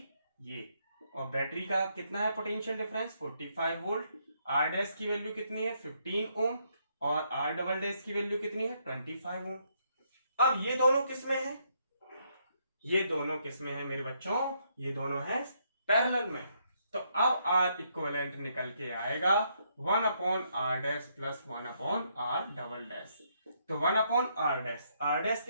ये, और बैटरी का कितना है potential difference 45 volt, R dash की वैल्यू कितनी है 15 ओम, और आर डबल डैश की वैल्यू कितनी है 25 ओम। अब ये दोनों किस में है, ये दोनों किस में है मेरे बच्चों, ये दोनों है पैरेलल में। तो अब आर इक्विवेलेंट निकल के आएगा 1 upon R dash plus 1 upon R double dash. तो 1 अपॉन आर डैश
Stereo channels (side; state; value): both; inverted; correlation -0.74